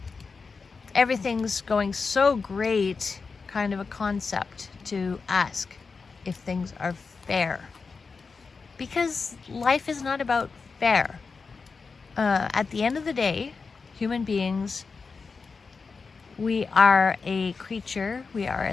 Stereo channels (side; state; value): right; quieter; 4.8 dB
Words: everything's going so great kind of a concept to ask if things are fair. Because life is not about fair. At the end of the day, human beings, we are a creature, we are a